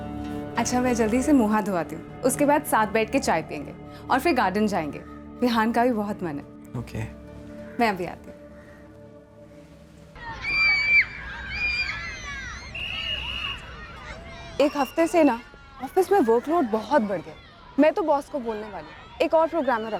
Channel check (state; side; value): identical; both; correlation 1.00